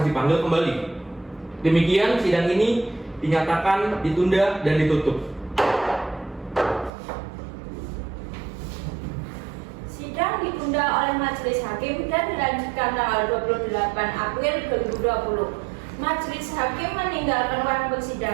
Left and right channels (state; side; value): drops out; left; at 6.9 s